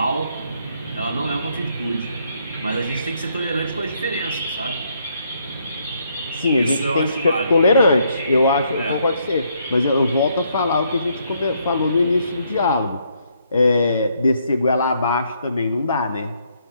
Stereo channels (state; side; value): inverted; both; correlation -0.72